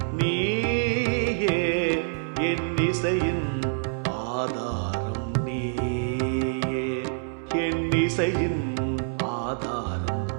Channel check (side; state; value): left; silent; 61 dB below the other